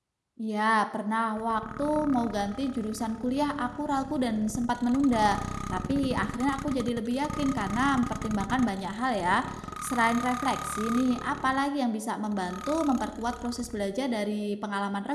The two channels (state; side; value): identical; both; correlation 1.00